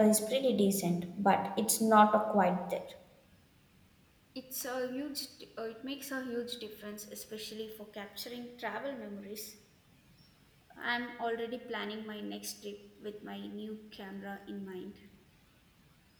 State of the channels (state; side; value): identical; both; correlation 1.00